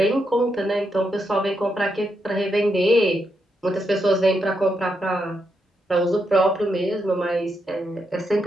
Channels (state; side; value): normal; both; correlation 0.82